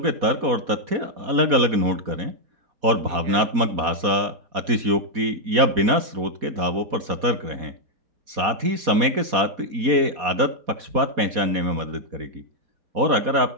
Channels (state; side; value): late; left; 4.2 ms